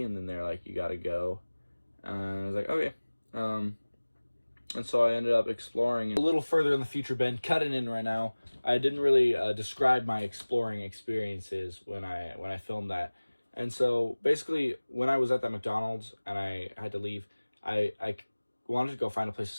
and then they're like, you gotta go. And I was like, okay. And so I ended up exploring a little further in the future. Ben, cutting in right now. I didn't really describe my exploring experiences when I filmed that. And so basically when I was at that McDonald's and I had to leave, I wanted to go find a place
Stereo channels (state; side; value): inverted; both; correlation -1.00